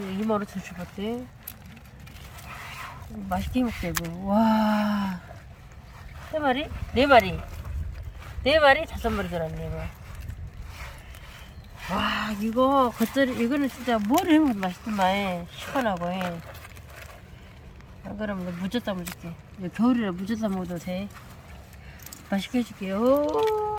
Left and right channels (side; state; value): both; identical; correlation 1.00